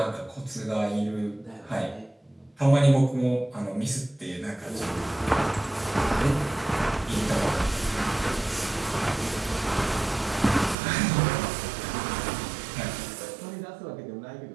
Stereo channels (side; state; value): left; drops out; at 10.8 s